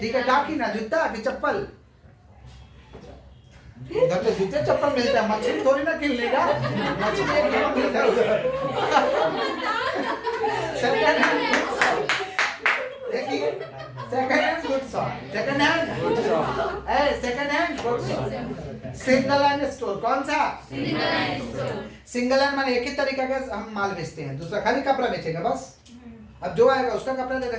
ठीक है, क्या की ना, जूता की चप्पल? उधर तो जूते चप्पल मिलता है, मछली थोड़ी ना किन लेगा, मछली एक किलो मिलता है उधर। सेकंड हैंड गुड शॉप, देखिए, second hand good shop, second hand good shop. Single hand store कौन सा? सिंगल हैंड माने एक ही तरीका का हम माल बेचते हैं, दूसरा खाली कपड़ा बेचेंगे बस। अब जो आएगा उसका कपड़ा दे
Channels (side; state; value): both; identical; correlation 1.00